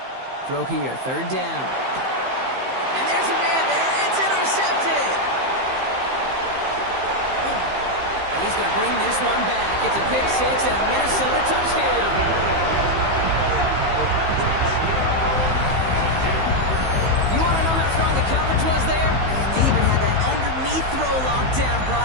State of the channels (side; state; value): left; late; 15 ms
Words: Throw here, third down. And there's a man there. It's intercepted. And he's going to bring this one back. It's a pick six and a Minnesota touchdown. You want to know how strong the coverage was there? They even had that underneath throw locked down,